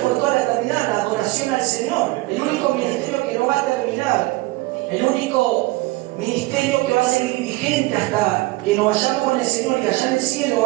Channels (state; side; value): quieter; left; 20.8 dB